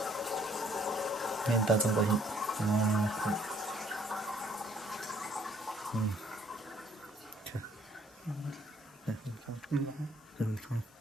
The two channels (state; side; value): normal; both; correlation 0.63